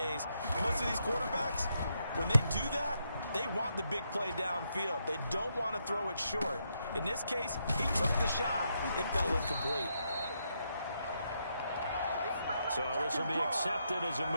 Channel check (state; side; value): inverted; both; correlation -0.80